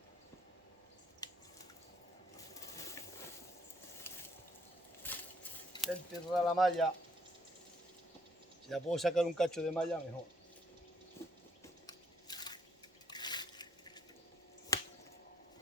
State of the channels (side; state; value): both; normal; correlation 0.67